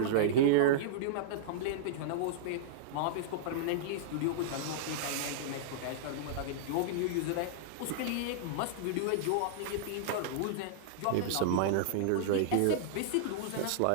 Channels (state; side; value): different; both; correlation -0.02